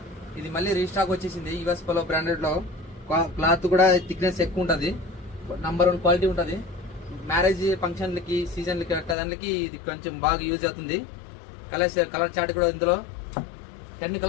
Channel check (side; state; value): right; drops out; at 9.2 s